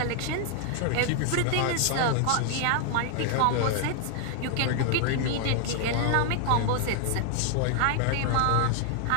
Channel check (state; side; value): different; both; correlation 0.00